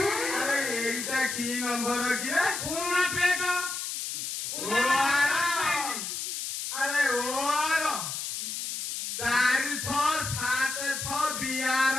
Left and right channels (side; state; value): left; noise; hiss, 4 dB below the sound